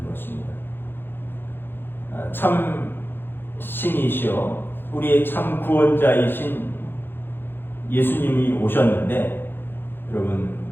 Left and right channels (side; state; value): right; late; 0.10 ms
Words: 것입니다. 참 신이시오 우리의 참 구원자이신 예수님이 오셨는데 여러분